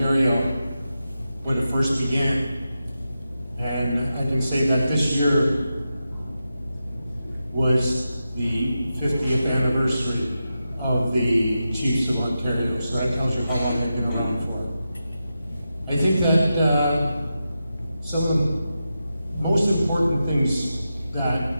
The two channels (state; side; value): inverted; both; correlation -0.90